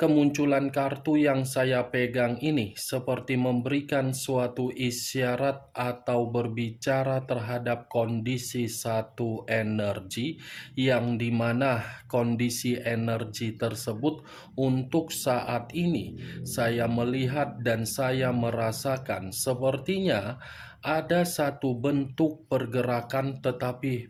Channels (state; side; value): identical; both; correlation 1.00